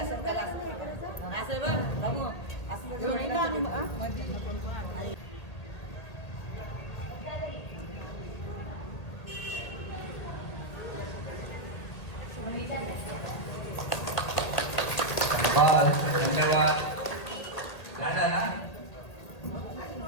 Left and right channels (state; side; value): late; right; 1.8 ms